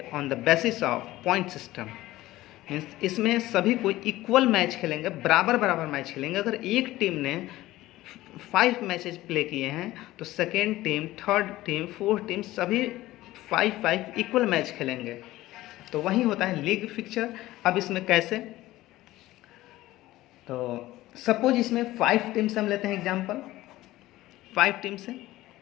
on the basis of point system. Means इसमें सभी को equal match खेलेंगे, बराबर बराबर match खेलेंगे। अगर एक team ने 5 मैचेज प्ले किए हैं तो second team, third team, fourth team सभी 5 इक्वल मैच खेलेंगे। तो वही होता है लीग फिक्चर। अब इसमें कैसे? तो सपोज इसमें 5 टीम से हम लेते हैं एग्जांपल, 5 टीम से।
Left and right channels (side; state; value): right; quieter; 16.7 dB